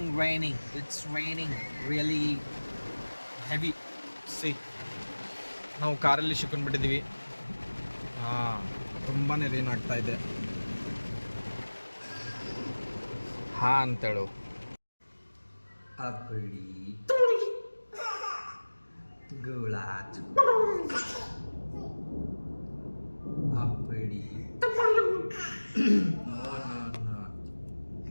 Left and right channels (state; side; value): inverted; both; correlation -1.00